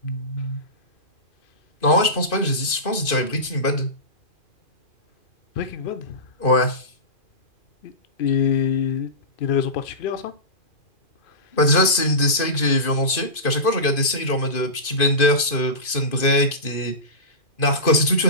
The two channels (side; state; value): right; late; 2.5 ms